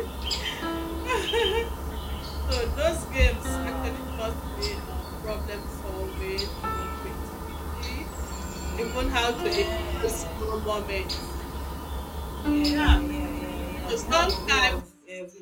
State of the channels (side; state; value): both; identical; correlation 1.00